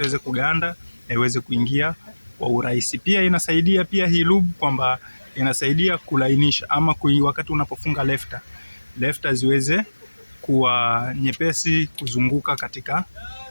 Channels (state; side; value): inverted; both; correlation -1.00